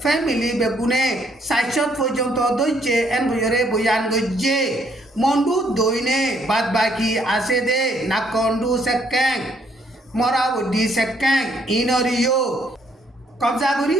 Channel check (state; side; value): normal; both; correlation 0.68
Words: ফ্যামিলি বেগুনে সাইশত পর্যন্ত দজ্জে এন কইরে বয়ান গজ্জে মন্ডু দইনে বাদ বাকি আছে দে নাকন্ডু সেক্যাং মরাবডি সেক্যাং ইনরিও কবজা করি